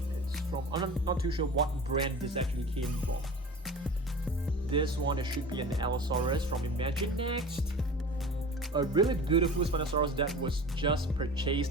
it's from, I'm not too sure what brand this actually came from. This one, it should be an Allosaurus from Imagine Next. A really beautiful Spinosaurus that was just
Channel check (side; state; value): both; normal; correlation 0.37